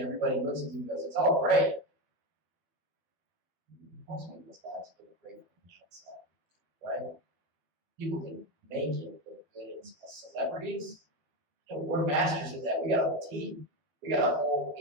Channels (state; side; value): late; left; 12 ms